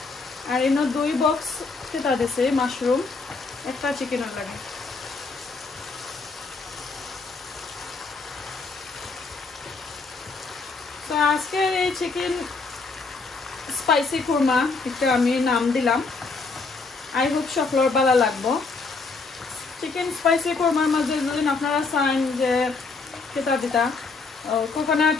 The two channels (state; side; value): quieter; right; 4.2 dB